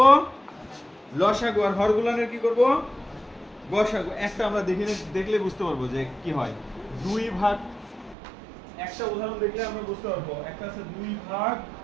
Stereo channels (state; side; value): drops out; left; at 8.2 s